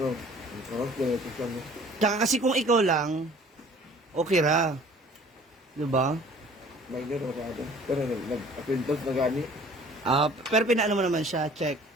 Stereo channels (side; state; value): both; normal; correlation 0.51